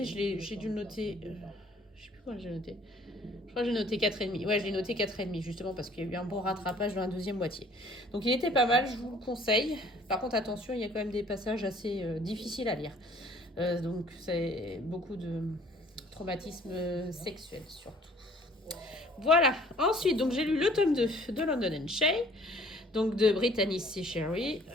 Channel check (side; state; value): both; normal; correlation 0.55